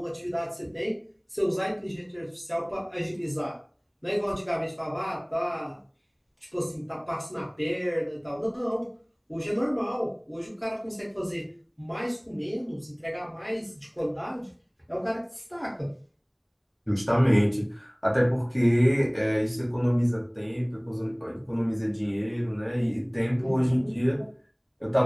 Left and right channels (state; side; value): identical; both; correlation 1.00